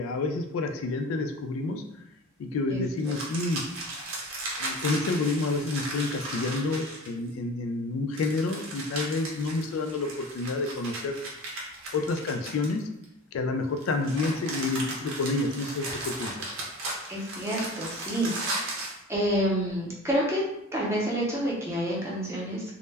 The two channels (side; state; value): both; normal; correlation 0.38